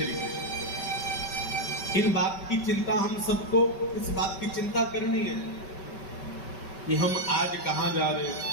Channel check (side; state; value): right; late; 5.2 ms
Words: कृष्ण। इन बात की चिंता हम सबको, इस बात की चिंता करनी है कि हम आज कहाँ जा रहे हैं।